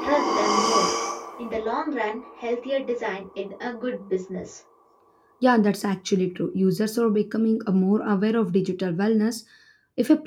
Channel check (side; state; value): both; identical; correlation 1.00